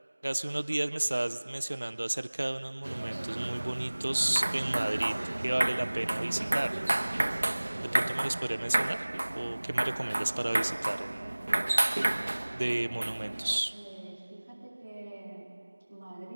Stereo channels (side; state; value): both; inverted; correlation -1.00